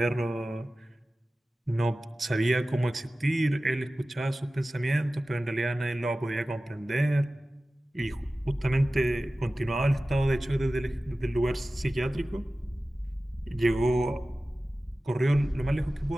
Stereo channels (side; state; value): both; normal; correlation 0.96